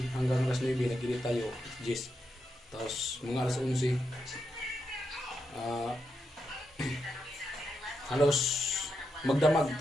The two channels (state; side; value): normal; both; correlation 0.84